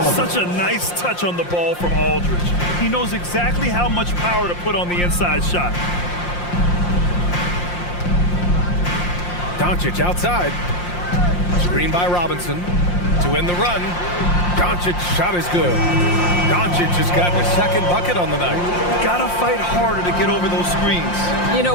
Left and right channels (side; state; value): right; late; 5.7 ms